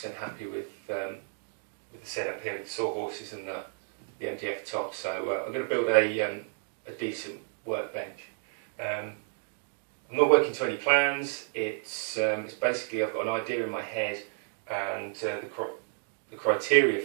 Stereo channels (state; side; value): silent; left; 57 dB below the other